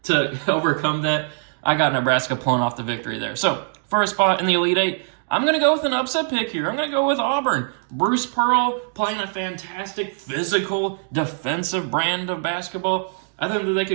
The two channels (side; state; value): left; silent; 64 dB below the other